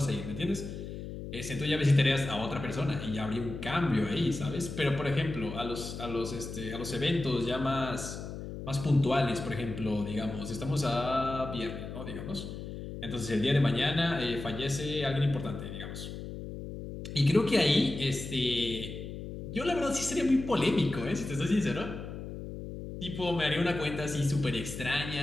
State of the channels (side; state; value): left; noise; hum, 8 dB below the sound